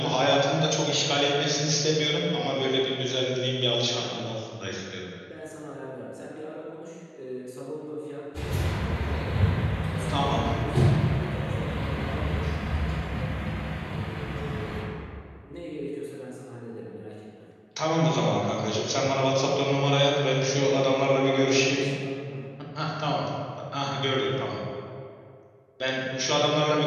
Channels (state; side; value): identical; both; correlation 1.00